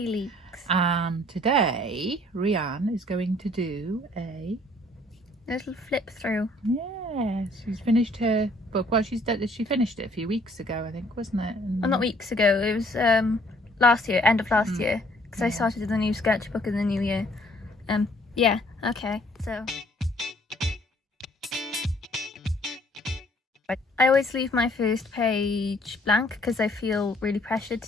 Leaks. And today Rhian is going to do a little flip through. Yes, she's finished her book. Well, she finished it a few weeks ago, I think, wasn't it? Well, not weeks ago. It was last year, end of last year, because I started the new sketchbook in the new year. Yeah. Okay. So I always leave my first page blank because I feel really pressured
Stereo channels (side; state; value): both; normal; correlation 0.61